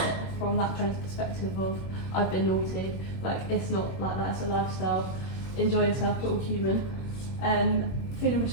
it from that friend's perspective of I've been naughty. Like it's not like that, it's a lifestyle. Enjoy yourself, we're all human. Feeling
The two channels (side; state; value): right; late; 22 ms